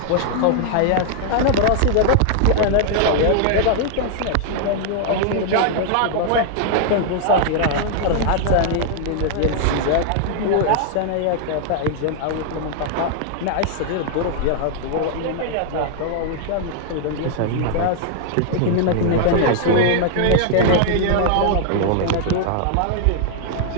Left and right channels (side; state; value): both; different; correlation -0.01